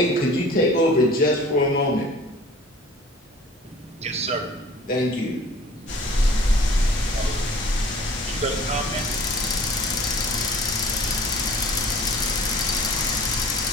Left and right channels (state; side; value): normal; both; correlation 0.48